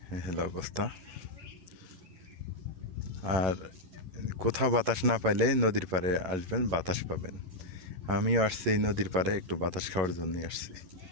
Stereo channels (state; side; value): late; left; 11 ms